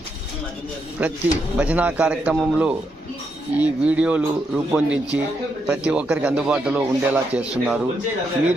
ప్రతి భజనా కార్యక్రమంలో ఈ వీడియోలు రూపొందించి ప్రతి ఒక్కరికి అందుబాటులో ఉండేలా చేస్తున్నారు.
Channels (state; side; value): normal; both; correlation 0.81